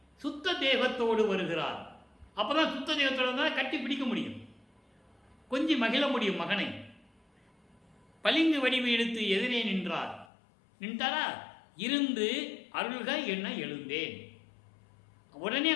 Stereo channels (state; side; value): drops out; right; at 10.2 s